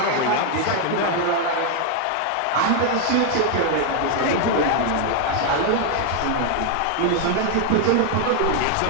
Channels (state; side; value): different; both; correlation 0.00